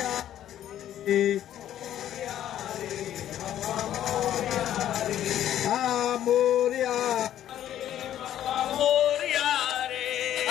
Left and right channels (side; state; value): right; quieter; 11.5 dB